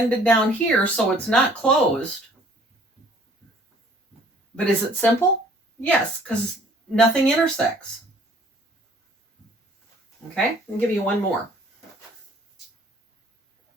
down here, so it's not closed. But is it simple? Yes, because nothing intersects. Okay, I'll give you one more.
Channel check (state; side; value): normal; both; correlation 0.56